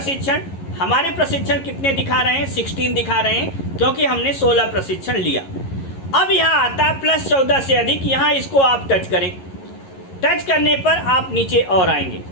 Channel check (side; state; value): right; late; 11 ms